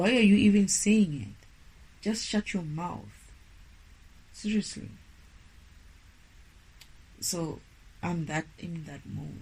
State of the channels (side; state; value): both; identical; correlation 1.00